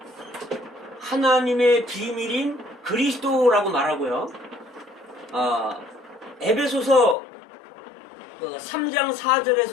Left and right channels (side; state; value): right; drops out; at 7.2 s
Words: 하나님의 비밀인 그리스도라고 말하고요. 에베소서 3장